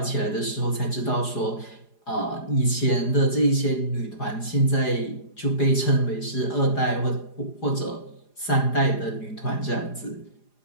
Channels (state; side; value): late; right; 4.9 ms